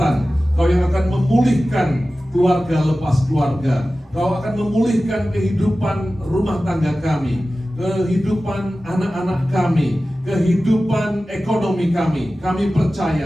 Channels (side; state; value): both; normal; correlation 0.95